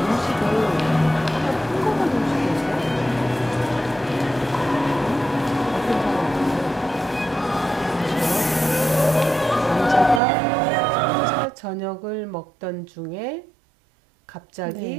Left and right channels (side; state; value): left; drops out; at 10.2 s